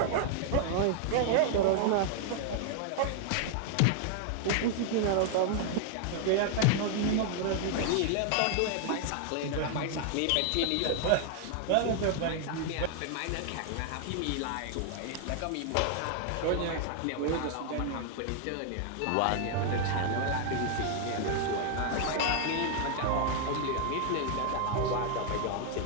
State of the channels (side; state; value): both; different; correlation 0.00